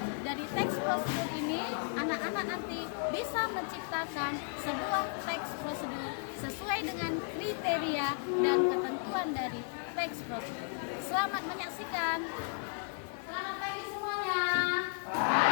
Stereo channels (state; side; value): silent; right; 55 dB below the other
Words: dari teks prosedur ini, anak-anak nanti bisa menciptakan sebuah teks prosedur sesuai dengan kriteria dan ketentuan dari teks prosedur. Selamat menyaksikan. Selamat pagi semuanya.